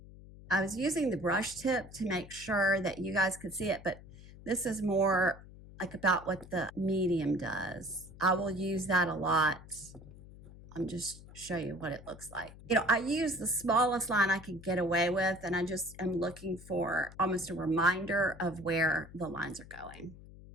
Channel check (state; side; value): noise; left; hum, 18 dB below the sound